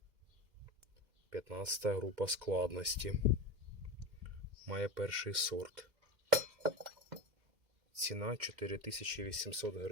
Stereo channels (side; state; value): left; late; 2.0 ms